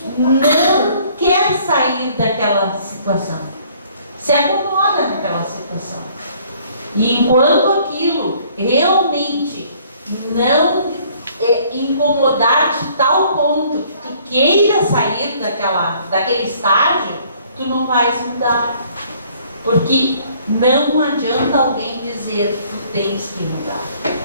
não quer sair daquela situação. Se acomoda naquela situação. E enquanto aquilo realmente não incomodar de tal ponto que tu queira sair daquele estágio, tu não vais mudar. Porque não adianta alguém dizer tu tens que mudar.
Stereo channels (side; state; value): both; inverted; correlation -0.59